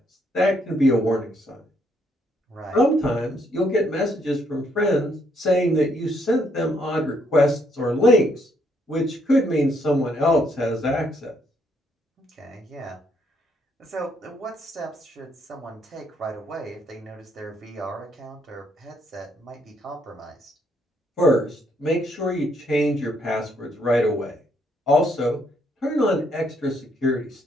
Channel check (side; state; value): both; normal; correlation 0.72